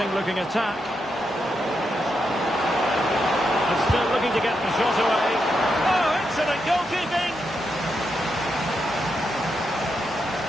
looking attack. And still looking to get the shot away. Oh, excellent goalkeeping.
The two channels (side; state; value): both; normal; correlation 0.83